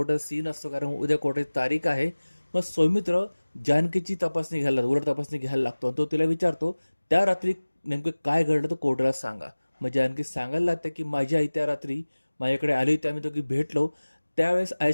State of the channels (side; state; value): both; inverted; correlation -1.00